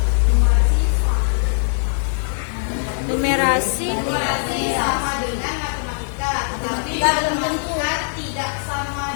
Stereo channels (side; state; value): right; silent; digital silence